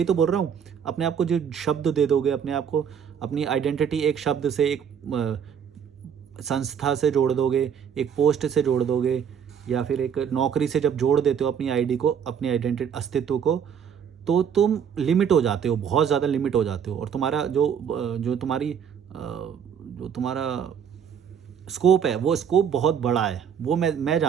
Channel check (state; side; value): quieter; left; 7.8 dB